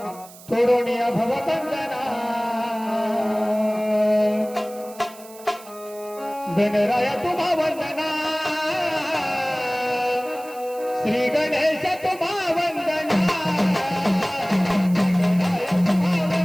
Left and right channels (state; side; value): noise; right; hiss, 20 dB below the sound